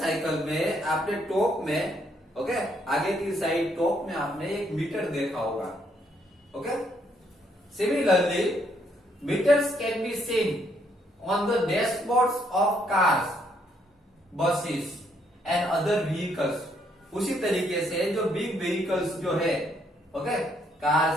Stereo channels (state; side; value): normal; both; correlation 0.71